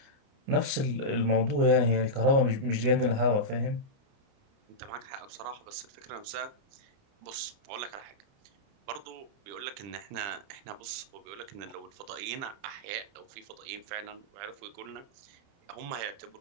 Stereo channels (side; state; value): left; late; 30 ms